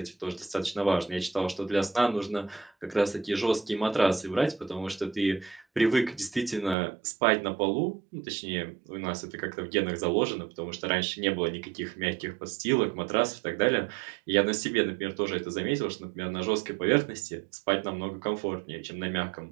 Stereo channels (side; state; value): left; drops out; at 6.8 s